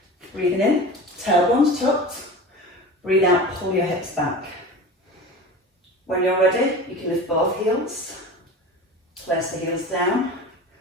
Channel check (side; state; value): both; normal; correlation 0.34